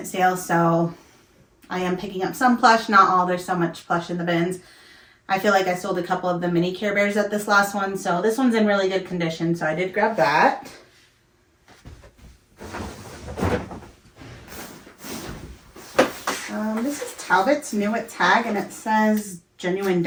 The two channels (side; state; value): both; identical; correlation 1.00